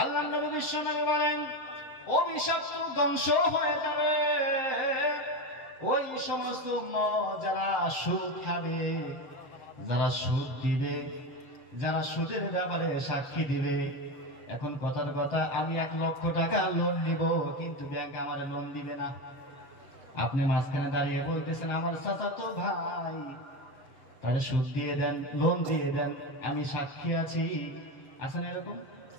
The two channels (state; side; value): late; right; 6.8 ms